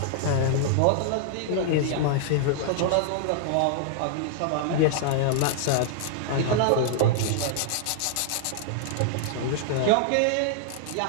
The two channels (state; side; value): different; both; correlation -0.01